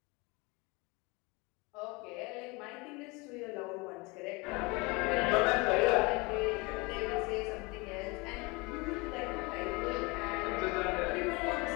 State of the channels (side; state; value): right; quieter; 26.3 dB